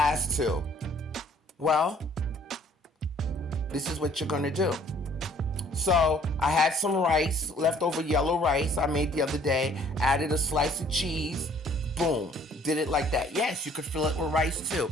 two? Well, this is what you're gonna do. So I had some rice, leftover yellow rice I made the other day, added a slice of cheese, boom, did it like that. Yes, you could fill it with rice too.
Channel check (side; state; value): both; normal; correlation 0.58